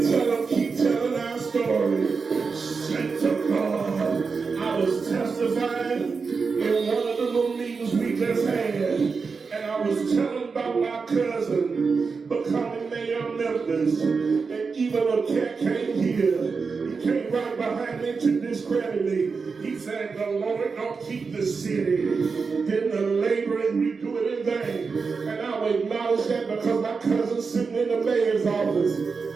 tell them, keep telling our story. Thank to God. I was testifying in one of the little meetings we just had, and I was telling about my cousin becoming mayor of Memphis. And even a cat came here. He came right behind me to discredit me. He said, the Lord don't keep the city, then the laborers we do it in vain. And I will acknowledge that because my cousin's sitting in the mayor's office.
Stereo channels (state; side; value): quieter; left; 4.9 dB